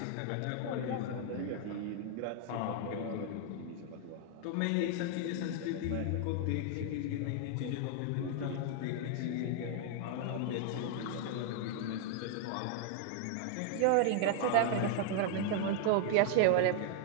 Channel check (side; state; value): both; different; correlation 0.00